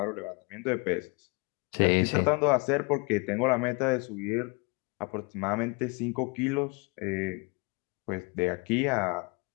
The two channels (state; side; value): quieter; right; 30.1 dB